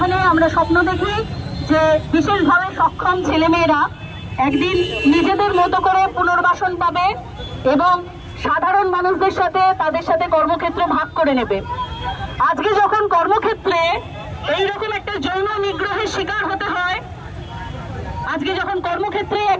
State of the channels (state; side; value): identical; both; correlation 1.00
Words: আমরা স্বপ্ন দেখি যে বিশেষভাবে সক্ষম ছেলেমেয়েরা একদিন নিজেদের মতো করে পুনর্বাসন পাবে এবং সাধারণ মানুষদের সাথে তাদের সাথে কর্মক্ষেত্র ভাগ করে নেবে। আজকে যখন কর্মক্ষেত্রে এইরকম একটা যৌন নিগ্রহের শিকার হতে হয়, আজকে যখন কর্মক্ষেত্রে